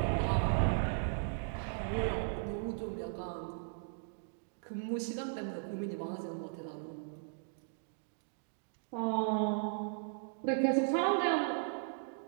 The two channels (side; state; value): left; silent; digital silence